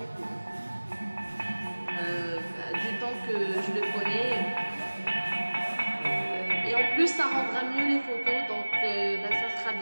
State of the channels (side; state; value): both; inverted; correlation -1.00